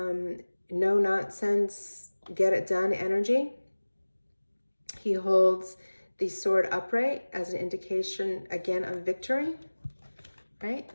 nonsense, get it done energy. He holds the sword upright as an indication, again, of victory, right?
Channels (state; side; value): inverted; both; correlation -1.00